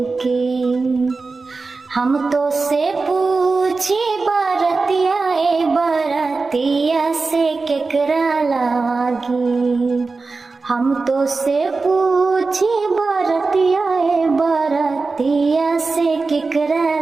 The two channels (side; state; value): left; quieter; 4.0 dB